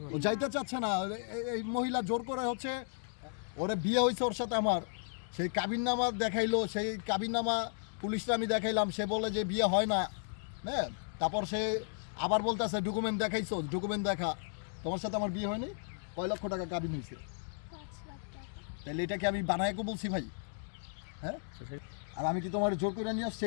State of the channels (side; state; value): right; silent; digital silence